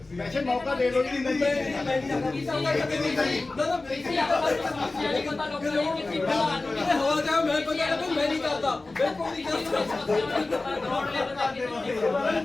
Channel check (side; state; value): right; quieter; 3.2 dB